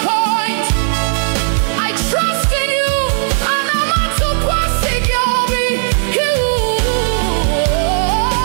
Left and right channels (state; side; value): silent; left; digital silence